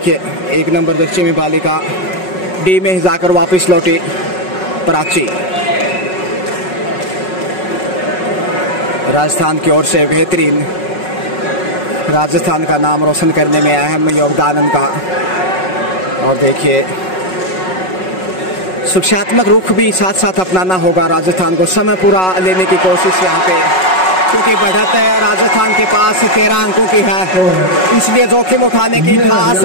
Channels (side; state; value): right; late; 5.4 ms